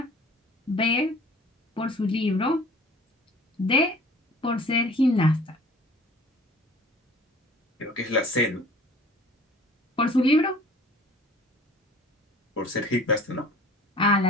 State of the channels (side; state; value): both; normal; correlation 0.48